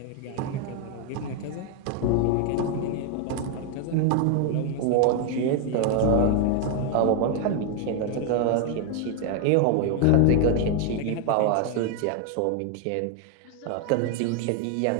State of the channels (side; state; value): both; different; correlation 0.01